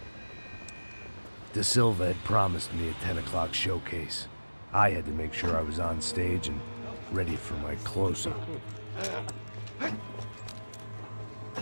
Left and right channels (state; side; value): inverted; both; correlation -1.00